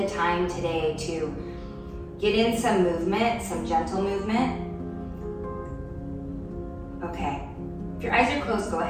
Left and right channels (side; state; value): both; identical; correlation 1.00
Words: time today to get in some movement, some gentle movement. Okay, if your eyes are closed, go